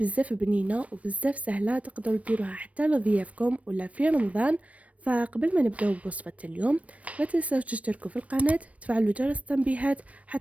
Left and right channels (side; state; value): left; late; 0.065 ms